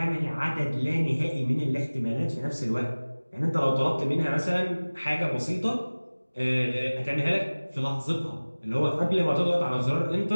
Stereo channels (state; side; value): inverted; both; correlation -1.00